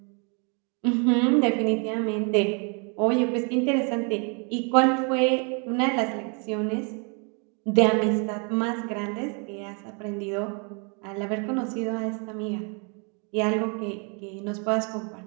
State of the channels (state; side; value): quieter; left; 35.8 dB